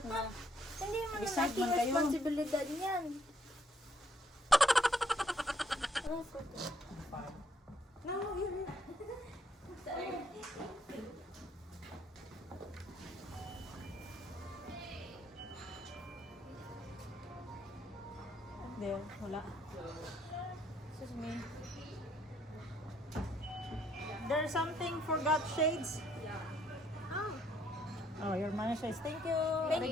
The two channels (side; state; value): both; normal; correlation 0.68